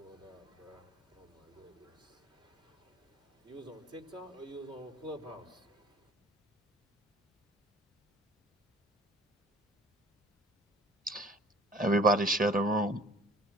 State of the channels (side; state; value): both; normal; correlation 0.50